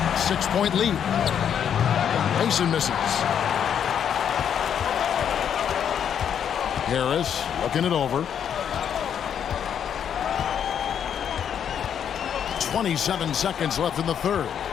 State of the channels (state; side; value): quieter; right; 8.6 dB